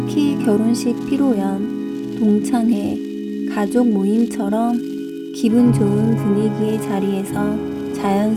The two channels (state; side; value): identical; both; correlation 1.00